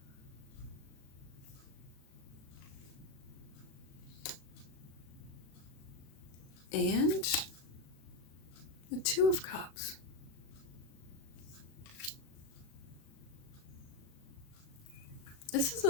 And the Two of Cups. This is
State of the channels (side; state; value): right; late; 37 ms